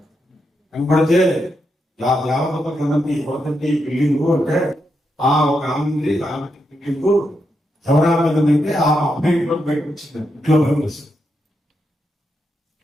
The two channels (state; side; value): normal; both; correlation 0.84